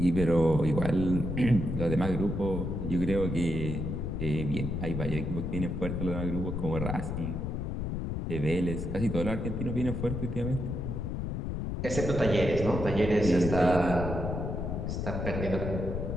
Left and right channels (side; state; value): left; noise; rumble, 3 dB below the sound